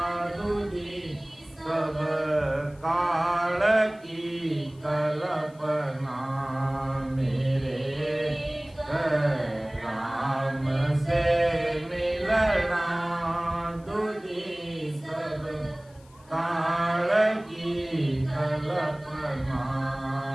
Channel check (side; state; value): left; noise; hiss, 29 dB below the sound